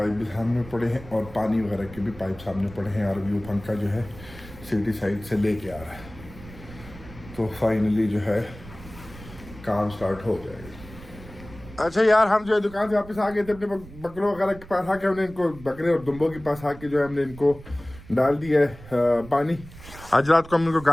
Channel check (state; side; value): noise; right; rumble, 17 dB below the sound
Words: भी सामने पड़े हैं और पानी वगैरह के भी पाइप सामने पड़े हैं, और व्यू पंखा जो है सिटी साइड से लेके आ रहा है। तो फाइनली जो है काम स्टार्ट हो जाएगा। अच्छा यार हम जो है दुकान से वापस आ गए थे, अपने बकरों वगैरह के पास आके हमने इनको, बकरे और दुम्बों के पास आके जो है हमने इनको डाल दिया है पानी। आज रात को हम इनको